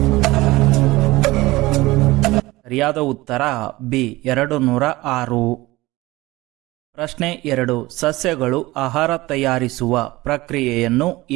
ಸರಿಯಾದ ಉತ್ತರ ಬಿ 206. ಪ್ರಶ್ನೆ 2. ಸಸ್ಯಗಳು ಆಹಾರ ತಯಾರಿಸುವ ಪ್ರಕ್ರಿಯೆಯನ್ನು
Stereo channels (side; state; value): left; quieter; 19.9 dB